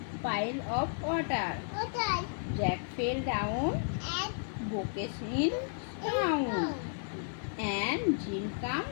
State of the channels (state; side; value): silent; right; digital silence